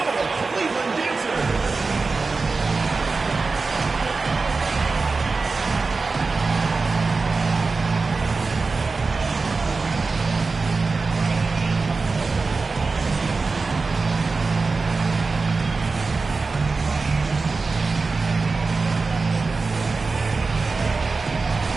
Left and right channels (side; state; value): left; quieter; 4.1 dB